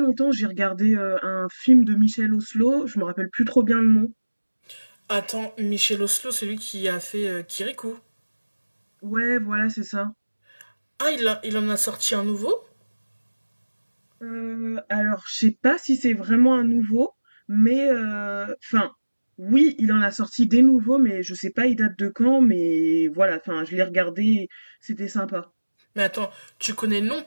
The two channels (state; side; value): inverted; both; correlation -1.00